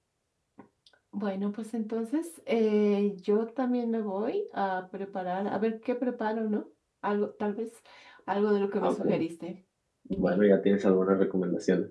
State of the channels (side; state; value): both; identical; correlation 1.00